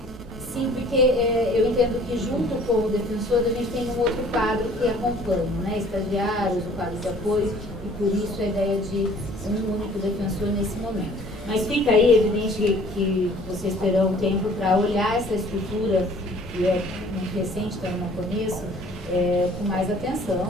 Sim, porque eu entendo que junto com o defensor a gente tem um outro quadro que acompanha, né? Estagiários, o quadro de apoio, e por isso a ideia de um único defensor nesse momento. Mas fica aí evidente que vocês terão tempo para olhar essa estrutura, que é muito recente, então eu não conheço, com mais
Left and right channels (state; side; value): normal; both; correlation 0.53